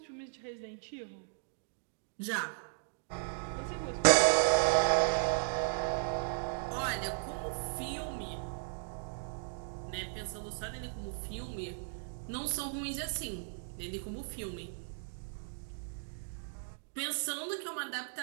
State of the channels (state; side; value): silent; left; digital silence